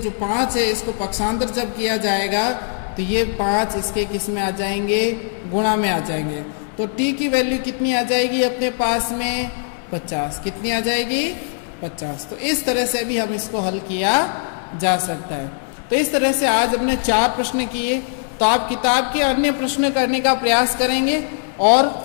5 है, इसको पक्षांतर जब किया जाएगा तो ये 5 इसके किस में आ जाएंगे, गुणा में आ जाएंगे। तो t की वैल्यू कितनी आ जाएगी अपने पास में, 50। कितनी आ जाएगी, 50। तो इस तरह से भी हम इसको हल किया जा सकता है। तो इस तरह से आज हमने 4 प्रश्न किए। तो आप किताब के अन्य प्रश्न करने का प्रयास करेंगे और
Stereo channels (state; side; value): silent; right; digital silence